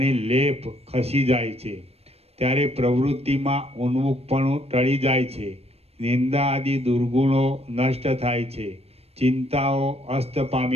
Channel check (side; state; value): left; late; 0.29 ms